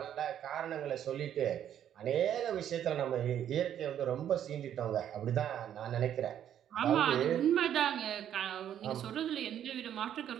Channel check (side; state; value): left; quieter; 10.2 dB